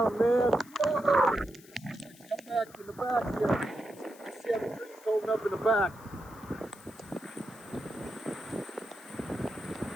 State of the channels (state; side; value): noise; left; hiss, 23 dB below the sound